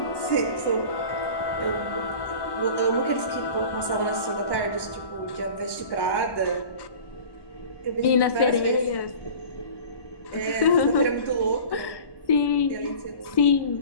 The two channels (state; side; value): late; right; 1.1 ms